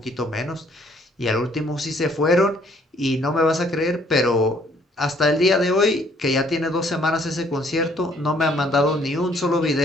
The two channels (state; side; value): normal; both; correlation 0.63